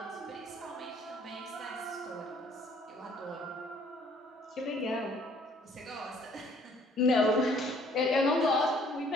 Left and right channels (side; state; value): both; normal; correlation 0.60